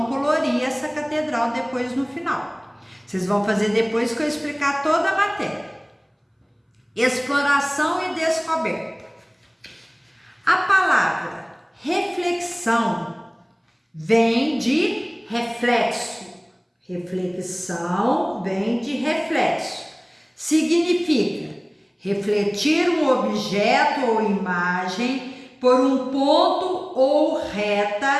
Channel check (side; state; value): both; identical; correlation 1.00